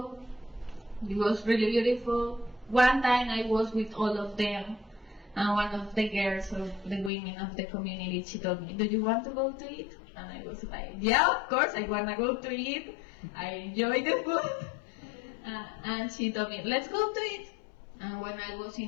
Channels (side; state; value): right; drops out; at 7.1 s